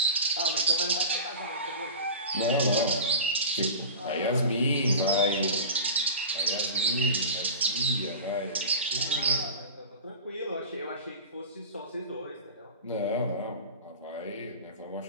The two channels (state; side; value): inverted; both; correlation -0.33